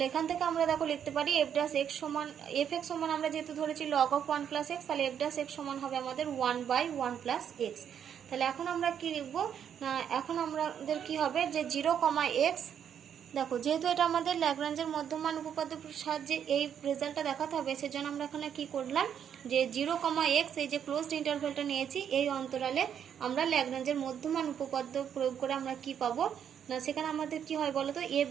এখান থেকে আমরা দেখো লিখতে পারি f'(x) সমান, fx সমান আমরা যেহেতু ধরেছি log of 1 plus x, তাহলে f'(x) সমান হবে আমাদের 1/1 plus x। তাহলে এখন আমরা কি লিখব না, এখন আমাদের কি হবে, যে 0, x। দেখো যেহেতু এটা আমাদের ল্যাগ্রাঞ্জের মধ্যমান উপপাদ্যের সাহায্যে এই রেজাল্টটা দেখাতে হবে, সেজন্য আমরা এখানে কি করলাম, যে 0, x এই যে ক্লোজড ইন্টারভ্যালটা নিয়েছি, এই অন্তরালে আমরা ল্যাগ্রাঞ্জের মধ্যমান উপপাদ্য প্রয়োগ করে আমরা কি পাবো না, সেখানে আমাদের কি হয় বলতো,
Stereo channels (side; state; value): left; quieter; 8.6 dB